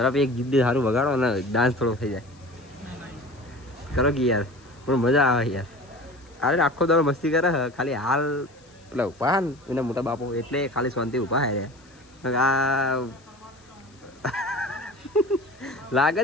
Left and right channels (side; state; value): left; noise; hiss, 30 dB below the sound